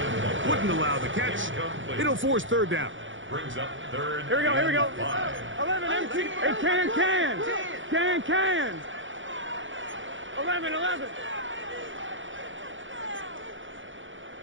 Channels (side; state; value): left; late; 0.56 ms